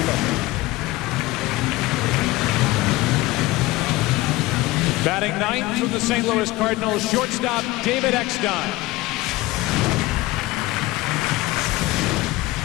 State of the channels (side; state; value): right; quieter; 19.2 dB